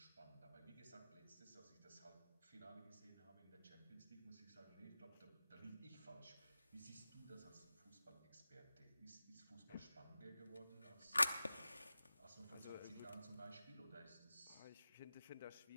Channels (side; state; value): both; inverted; correlation -0.95